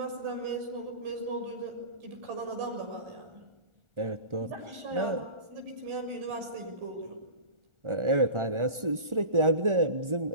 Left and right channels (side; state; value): left; late; 1.4 ms